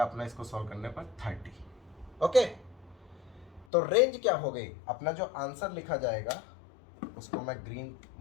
अपना इसको सॉल्व करने पर 30। ओके, तो रेंज क्या हो गई, अपना जो आंसर लिखा जाएगा उसको मैं ग्रीन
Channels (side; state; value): right; drops out; at 3.7 s